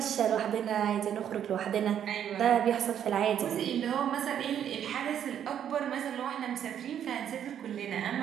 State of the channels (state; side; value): quieter; left; 9.5 dB